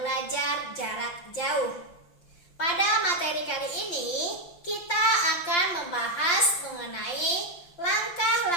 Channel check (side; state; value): right; late; 5.8 ms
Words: belajar jarak jauh. Pada materi kali ini, kita akan membahas mengenai